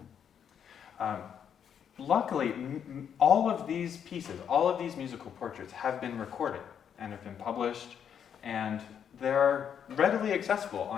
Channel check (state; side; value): quieter; right; 8.3 dB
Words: Luckily, all of these pieces, all of these musical portraits have been recorded and have been published, and they're readily accessible